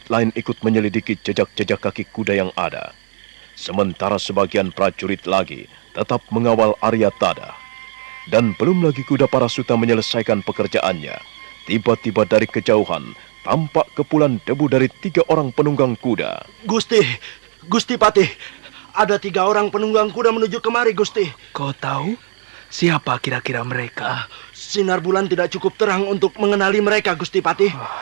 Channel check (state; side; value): silent; left; digital silence